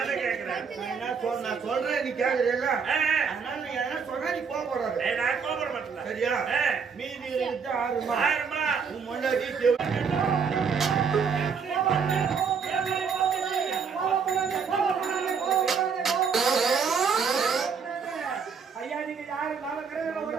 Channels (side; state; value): left; quieter; 6.0 dB